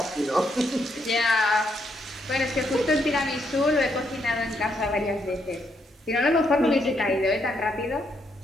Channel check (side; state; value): both; normal; correlation 0.76